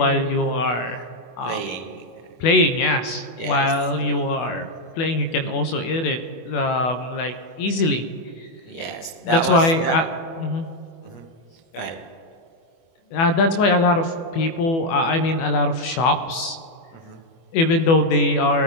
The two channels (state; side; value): late; right; 24 ms